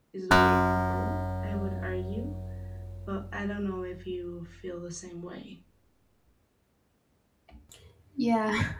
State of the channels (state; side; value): identical; both; correlation 1.00